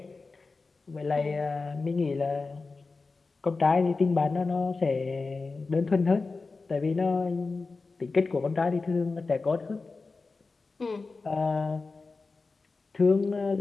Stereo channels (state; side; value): quieter; right; 4.0 dB